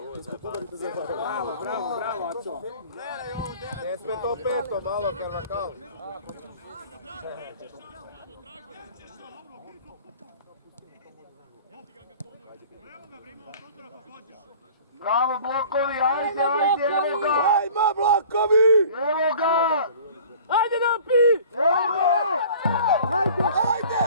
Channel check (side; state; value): both; inverted; correlation -0.46